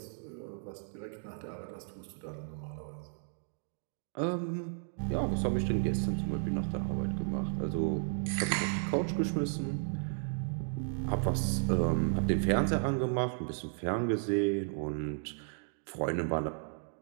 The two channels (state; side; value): silent; left; digital silence